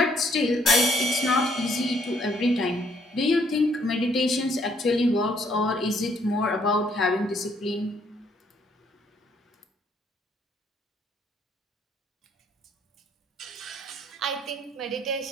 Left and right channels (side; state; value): both; normal; correlation 0.67